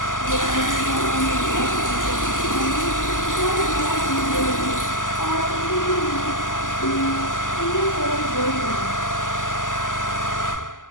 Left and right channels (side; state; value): right; late; 0.88 ms